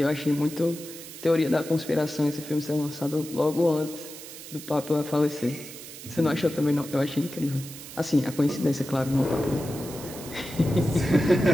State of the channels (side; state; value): right; noise; hiss, 14 dB below the sound